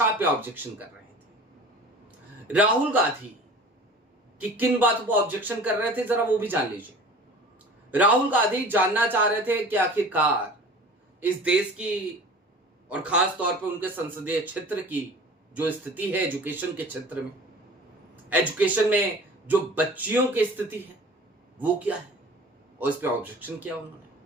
पे ऑब्जेक्शन कर रहे थे। राहुल गांधी कि किन बातों पर ऑब्जेक्शन कर रहे थे जरा वो भी जान लीजिए। राहुल गांधी जानना चाह रहे थे कि आखिरकार इस देश की और खास तौर पर उनके संसदीय क्षेत्र की जो स्थिति है एजुकेशन के क्षेत्र में, एजुकेशन में जो बच्चियों की स्थिति है वो क्या है, और इस पे ऑब्जेक्शन किया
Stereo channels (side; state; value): both; normal; correlation 0.41